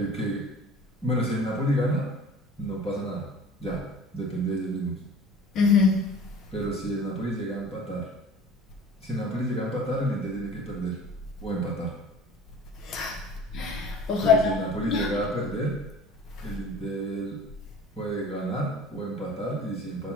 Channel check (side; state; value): both; normal; correlation 0.44